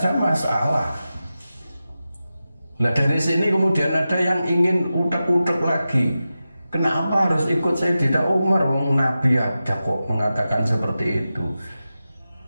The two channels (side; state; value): both; inverted; correlation -0.93